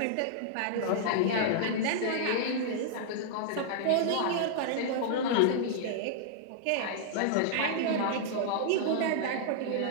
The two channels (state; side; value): different; both; correlation -0.01